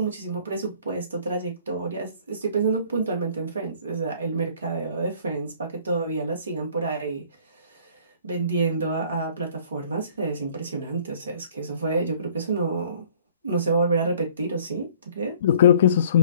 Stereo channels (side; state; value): both; inverted; correlation -0.54